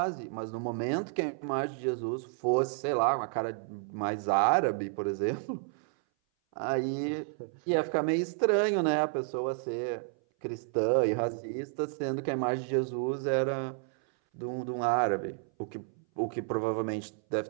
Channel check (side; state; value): left; silent; 57 dB below the other